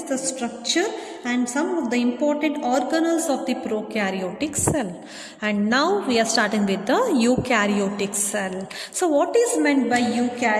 the structure and some of the important organelles of the prokaryotic cell. And now we are starting with the eukaryotic cell. So what is meant by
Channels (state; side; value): identical; both; correlation 1.00